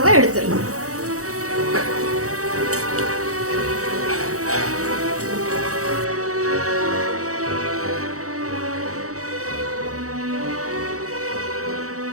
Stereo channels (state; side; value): late; left; 0.65 ms